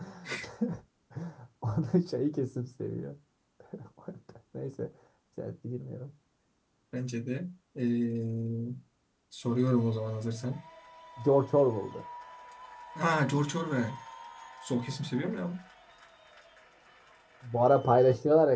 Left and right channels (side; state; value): both; identical; correlation 1.00